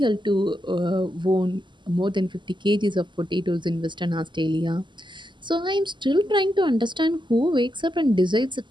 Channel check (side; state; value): left; late; 0.23 ms